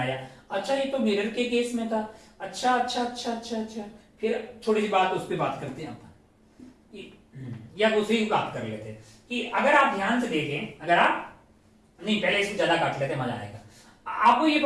अच्छा ये तो मिरर के केस में था। अच्छा। फिर छोटी सी बात उस पर बात करते हैं या दूसरी बात कर लेते हैं कि अगर आप ध्यान से देखें, अगर आप नहीं, पहले इसको ज्यादा काट लेते, मजा आएगा। आपको ये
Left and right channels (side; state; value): both; identical; correlation 1.00